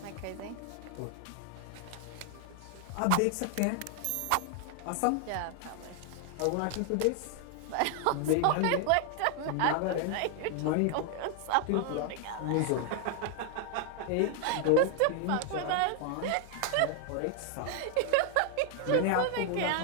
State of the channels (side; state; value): both; different; correlation 0.00